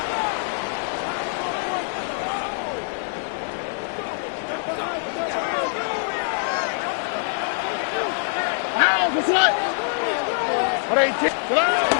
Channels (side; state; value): right; silent; digital silence